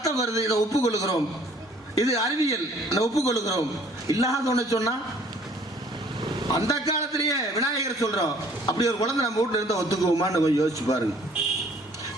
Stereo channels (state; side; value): normal; both; correlation 0.57